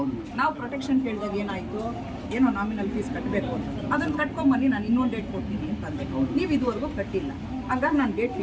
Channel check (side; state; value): both; identical; correlation 1.00